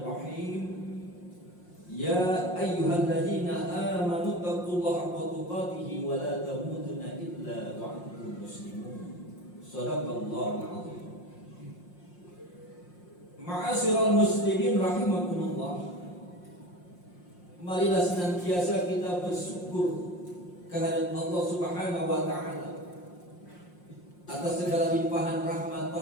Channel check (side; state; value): right; late; 5.6 ms